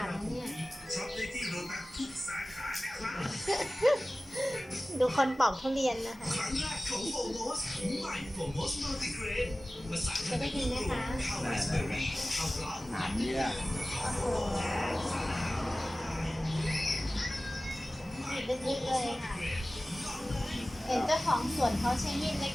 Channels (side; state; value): both; normal; correlation 0.97